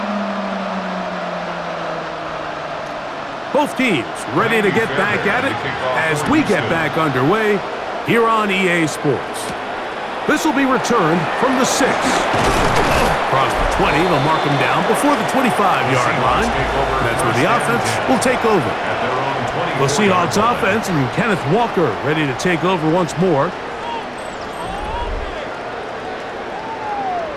Both teams ready to get back at it as we get back underway here on EA Sports. This will be returned from the 6. Across the 20, they'll mark him down before the 25-yard line. That's where the offense will take over. The Seahawks offense and Kenneth Walker ready to take over once more.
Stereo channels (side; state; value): both; identical; correlation 1.00